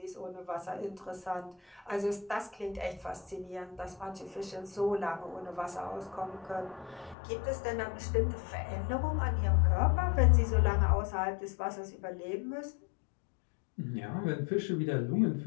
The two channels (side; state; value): right; drops out; at 7.2 s